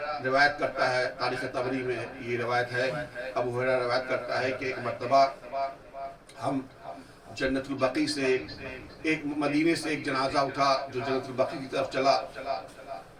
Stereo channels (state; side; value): identical; both; correlation 1.00